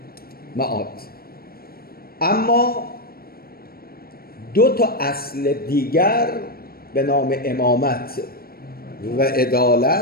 معاد. اما دو تا اصل دیگر به نام امامت و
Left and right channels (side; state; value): right; late; 0.44 ms